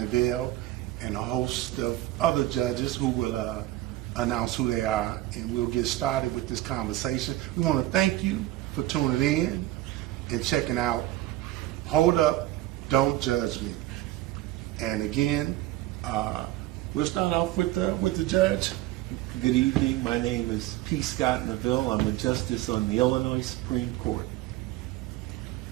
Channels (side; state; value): left; quieter; 15.9 dB